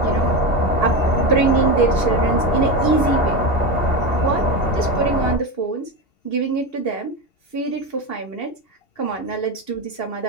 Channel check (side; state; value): right; late; 2.8 ms